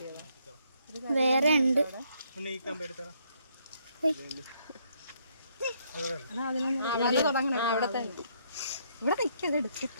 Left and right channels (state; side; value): inverted; both; correlation -0.71